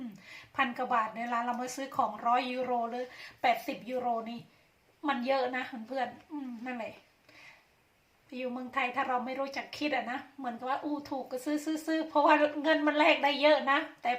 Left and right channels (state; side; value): identical; both; correlation 1.00